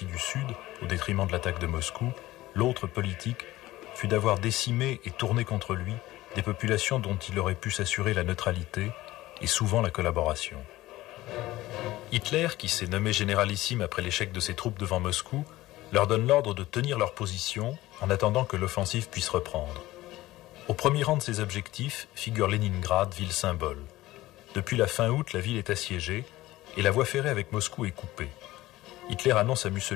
du Sud, au détriment de l'attaque de Moscou. L'autre, politique, fut d'avoir décimé et tourné contre lui des populations dont il aurait pu s'assurer la neutralité et souvent la collaboration. Hitler, qui s'est nommé généralissime après l'échec de ses troupes devant Moscou, leur donne l'ordre de tenir leur position en attendant que l'offensive puisse reprendre. Au premier rang de ses objectifs figure Leningrad, ville symbole. Depuis la fin août, la ville est assiégée et la voie ferrée avec Moscou est coupée. Hitler annonce à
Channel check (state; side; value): quieter; right; 17.1 dB